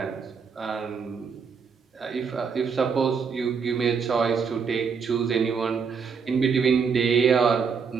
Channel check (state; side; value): quieter; left; 5.8 dB